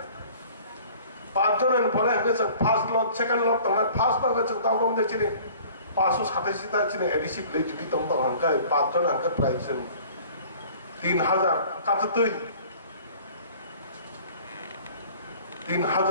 পাঁচজনের পরে ফার্স্ট লট সেকেন্ড লট তোমার ফার্স্ট লট তাও কম দেখছি 587টা চিনি এডিসি ভিলেজ যদি তোমার হাঙ্কায় পাঁচজন হাঙ্কা প্রায় 3000 কাটাতেই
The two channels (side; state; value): both; inverted; correlation -0.49